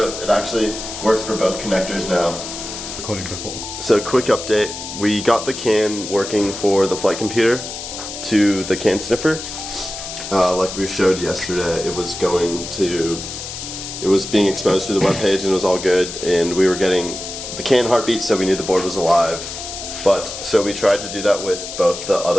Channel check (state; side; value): noise; left; hiss, 8 dB below the sound